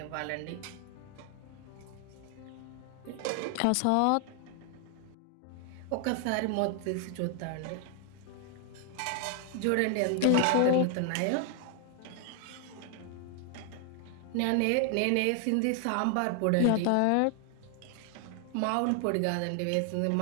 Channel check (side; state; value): both; different; correlation 0.00